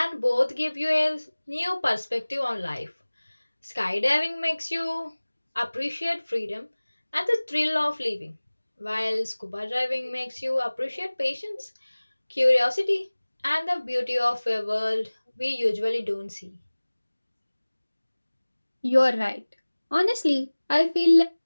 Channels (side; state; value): both; inverted; correlation -1.00